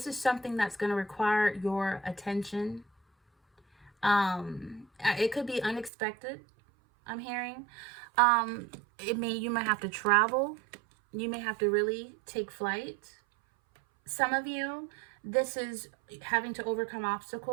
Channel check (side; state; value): left; drops out; at 5.9 s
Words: is something that's going to require your attention. It could be unexpected, I'm hearing. You might have to travel. You may have to really take flight. Some of you, this is having to overcome